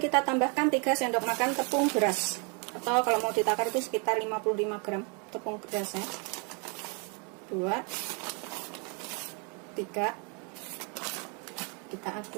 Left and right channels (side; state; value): left; quieter; 35.2 dB